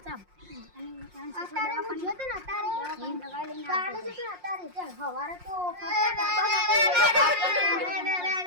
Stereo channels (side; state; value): left; late; 5.6 ms